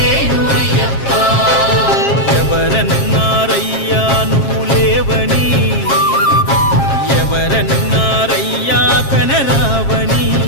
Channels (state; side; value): late; right; 7.4 ms